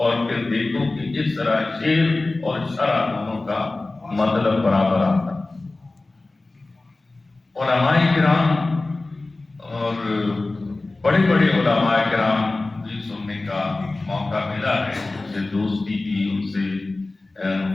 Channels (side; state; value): right; quieter; 3.1 dB